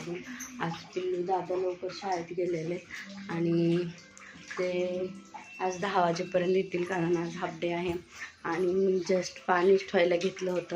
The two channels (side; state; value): both; identical; correlation 1.00